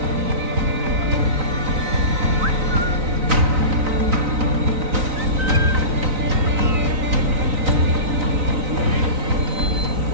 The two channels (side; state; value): left; late; 3.9 ms